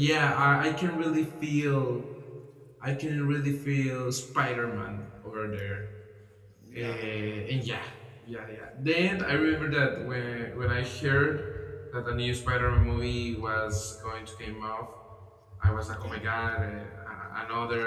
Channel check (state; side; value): identical; both; correlation 1.00